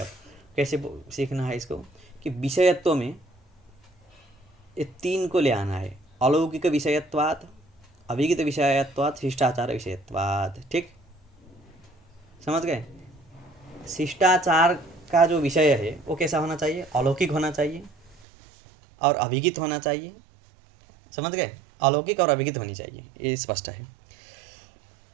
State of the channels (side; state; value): left; drops out; at 18.2 s